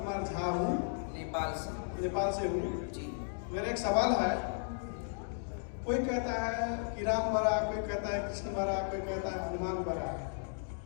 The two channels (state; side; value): silent; right; digital silence